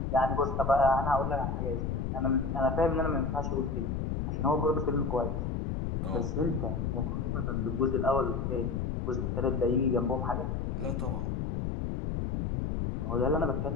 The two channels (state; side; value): noise; left; rumble, 1 dB below the sound